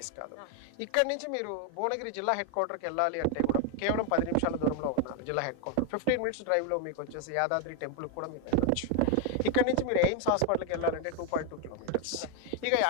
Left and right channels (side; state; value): both; different; correlation 0.01